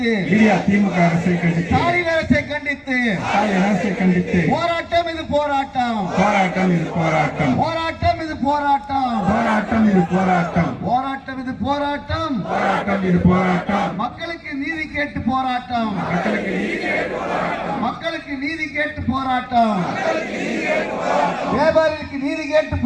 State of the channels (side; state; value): both; identical; correlation 1.00